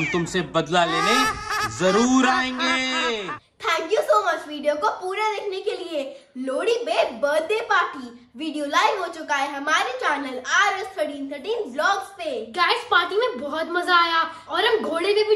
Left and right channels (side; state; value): both; identical; correlation 1.00